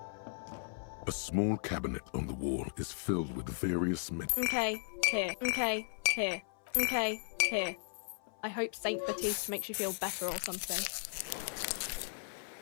A small cabinet on the wall is filled with various Okay, here. Okay, here. Okay, here. I hope Saint Baptiste makes you feel better or something.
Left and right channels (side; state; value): right; silent; 54 dB below the other